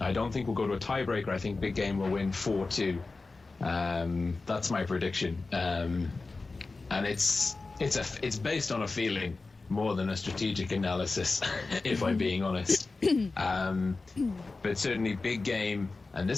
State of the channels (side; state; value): right; quieter; 3.7 dB